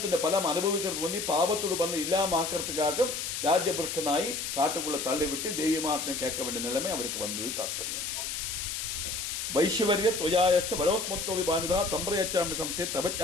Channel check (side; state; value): left; noise; hiss, 4 dB below the sound